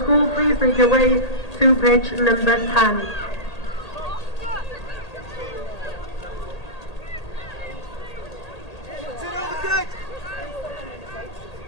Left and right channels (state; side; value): late; right; 1.8 ms